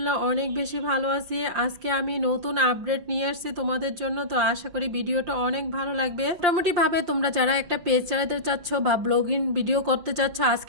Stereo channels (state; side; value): late; left; 5.7 ms